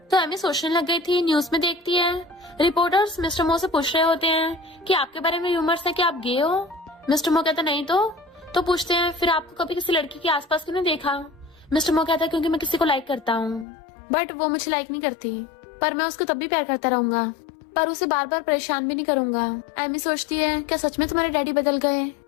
तो एमी सोचने लग गई थी, न्यूज में देखती है रिपोर्टर्स मिस्टर मो से पूछ रहे होते हैं कि आपके बारे में र्यूमर्स है कि आप गे हो। मिस्टर मो कहता नहीं। तो पूछते हैं फिर आपको कभी किसी लड़की के आसपास क्यों नहीं देखा? मिस्टर मो कहता है क्योंकि मैं किसी को लाइक करता हूँ, बट वो मुझे लाइक नहीं करती, पर मैं उसको तब भी प्यार करता रहूंगा, पर उसे बार बार परेशान भी नहीं करूंगा। एमी सोचती है क्या सच में तुम्हारे डैडी बदल गए?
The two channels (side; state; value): right; drops out; at 13.7 s